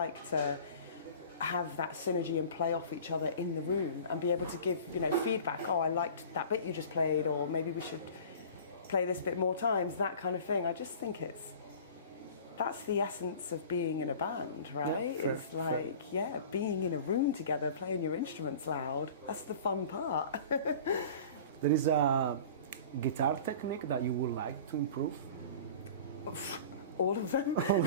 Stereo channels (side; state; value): both; inverted; correlation -0.41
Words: to have that synergy and play off each other in the room and be able to give, feedback. Oh, I liked that bit you just played, or maybe we should play this bit more times, that kind of thing. I just think that's the essence of being in a band, right? Yeah, it's like, being in a room together, playing your instruments loud. That's the fun part. There is a guitar technique that you would like to improve? All of them.